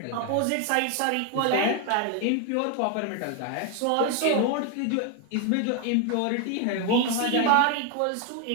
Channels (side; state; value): both; different; correlation 0.01